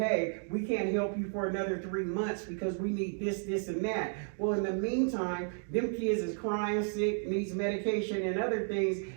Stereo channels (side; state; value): left; silent; 56 dB below the other